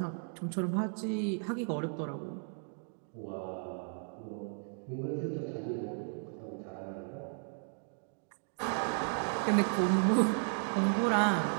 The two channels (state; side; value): silent; left; 55 dB below the other